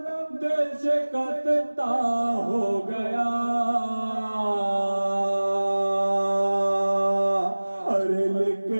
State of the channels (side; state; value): both; inverted; correlation -1.00